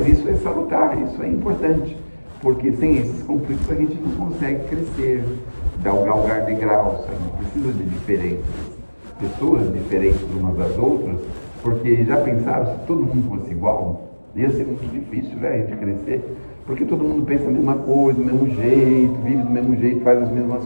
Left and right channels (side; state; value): both; inverted; correlation -1.00